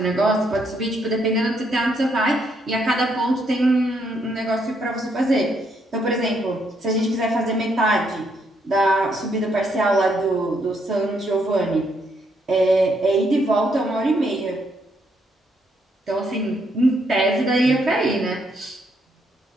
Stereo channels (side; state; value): both; normal; correlation 0.74